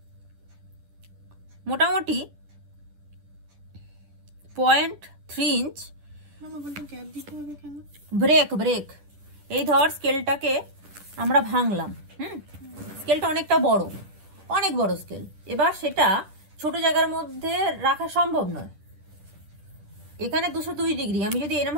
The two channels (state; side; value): late; left; 10 ms